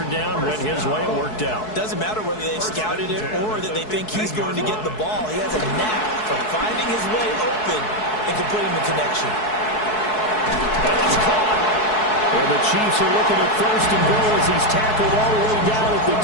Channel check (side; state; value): right; late; 4.7 ms